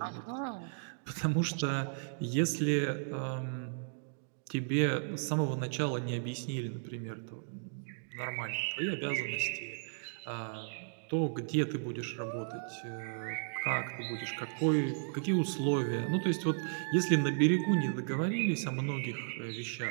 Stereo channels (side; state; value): left; silent; digital silence